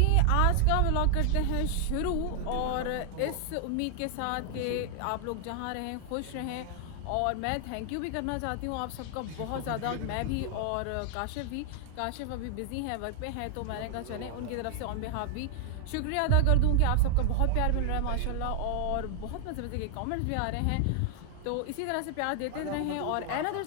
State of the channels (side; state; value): both; different; correlation -0.01